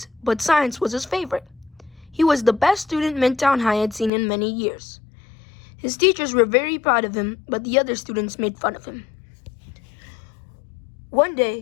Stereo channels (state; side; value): drops out; right; at 4.1 s